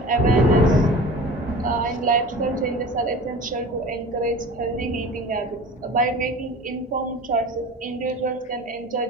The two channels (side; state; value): both; normal; correlation 0.38